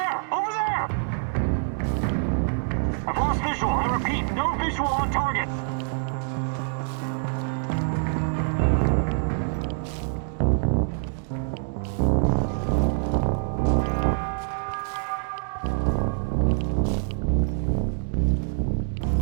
Over there! I've lost visual. I repeat, no visual on target.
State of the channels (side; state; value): left; silent; digital silence